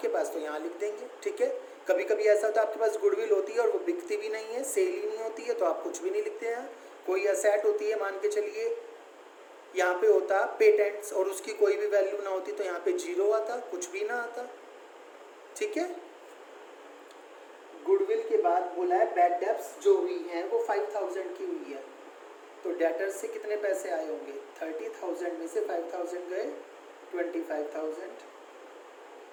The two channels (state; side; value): identical; both; correlation 1.00